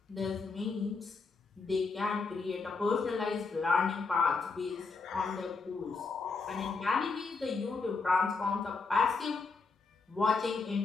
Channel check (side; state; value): right; quieter; 4.4 dB